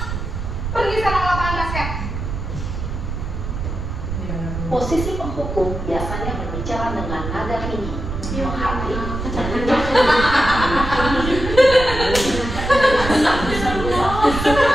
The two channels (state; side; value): noise; right; rumble, 5 dB below the sound